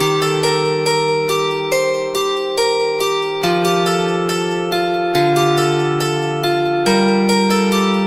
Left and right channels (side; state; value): both; identical; correlation 1.00